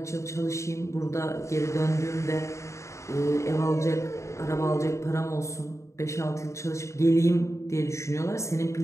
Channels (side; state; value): right; late; 0.14 ms